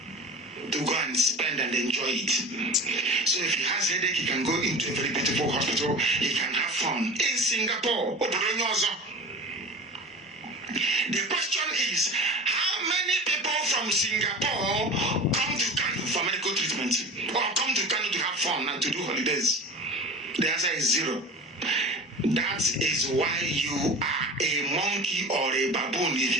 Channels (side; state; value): both; normal; correlation 0.35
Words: to go and spend and enjoy it. So if he has headache, he can go into a very beautiful hospital. He can have fun in Singapore. The question is, how many people from Singapore come to Kanu for medical treatment or come to Kanu to have fun and to do holidays? The answer is zero. That is why you are a monkey or a baboon if